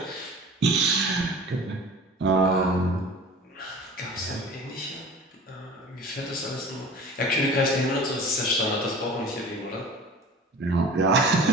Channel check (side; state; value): both; normal; correlation 0.41